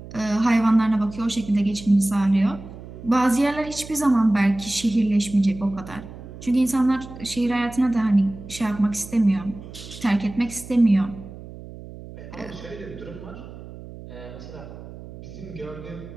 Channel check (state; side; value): noise; right; hum, 15 dB below the sound